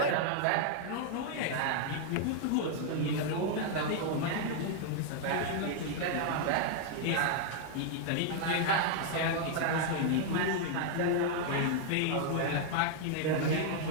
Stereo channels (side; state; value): both; different; correlation 0.00